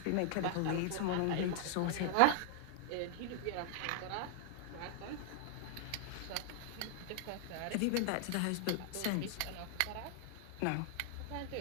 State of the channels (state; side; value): different; both; correlation 0.00